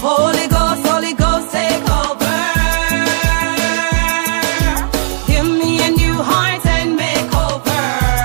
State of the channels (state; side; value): silent; left; 71 dB below the other